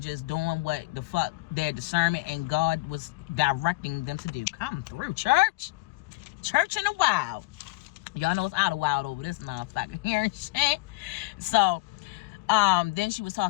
just doing what the fuck their discernment and God was directing them to do. Come through, church. Church in the wild. Y'all know it's out of wild over this motherfucker here and shit. So then she was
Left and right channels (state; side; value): quieter; right; 23.1 dB